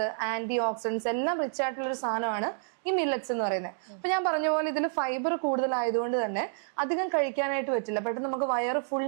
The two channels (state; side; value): silent; left; digital silence